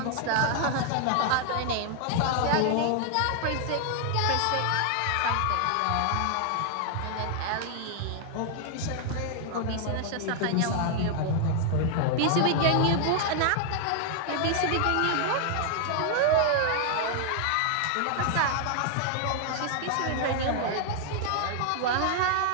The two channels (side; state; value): both; different; correlation 0.00